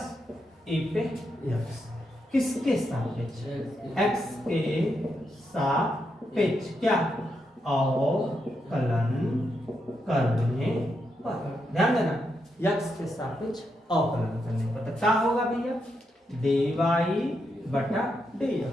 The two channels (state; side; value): normal; both; correlation 0.82